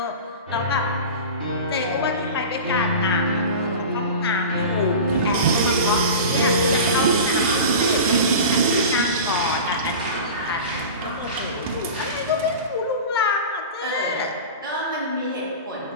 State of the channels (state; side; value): inverted; both; correlation -0.32